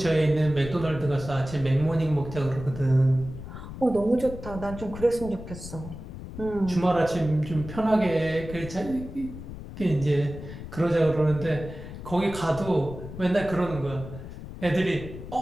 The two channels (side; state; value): left; noise; rumble, 11 dB below the sound